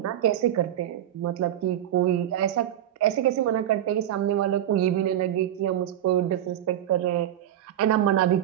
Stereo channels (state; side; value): quieter; left; 11.5 dB